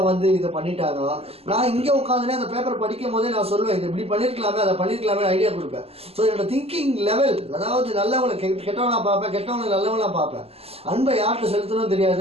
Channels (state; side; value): late; left; 0.29 ms